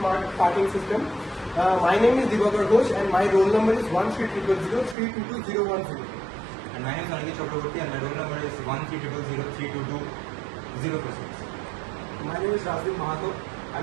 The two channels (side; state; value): left; drops out; at 5.0 s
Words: parking system. My name is Divakar Ghosh and my roll number is 13003221010. And my name is Aniket Chakraborty and my roll number is 13003220026. My name is Rajiv Mahato